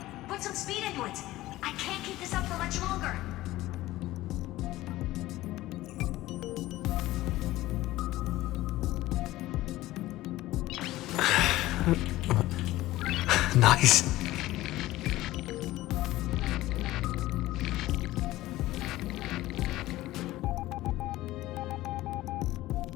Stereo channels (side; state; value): right; quieter; 16.8 dB